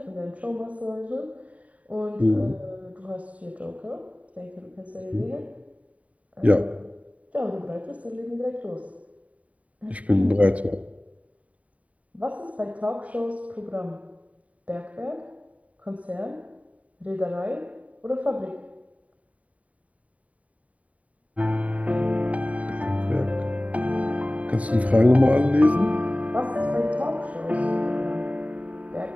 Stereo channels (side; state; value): left; late; 0.068 ms